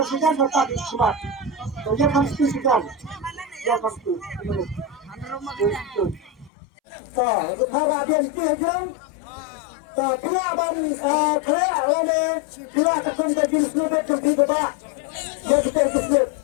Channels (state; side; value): drops out; right; at 6.5 s